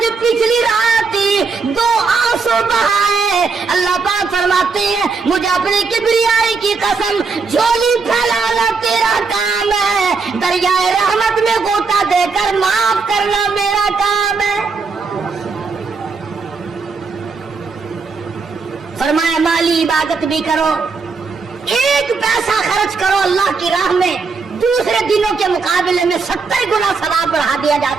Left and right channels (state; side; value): quieter; left; 4.7 dB